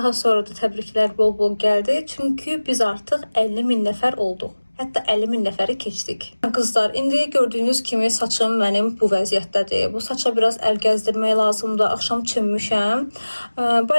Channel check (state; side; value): inverted; both; correlation -1.00